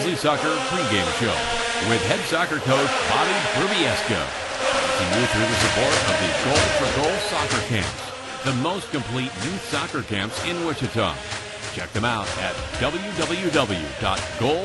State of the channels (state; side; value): identical; both; correlation 1.00